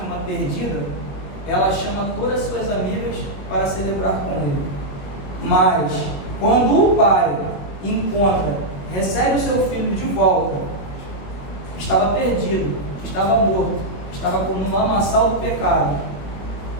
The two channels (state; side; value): late; right; 21 ms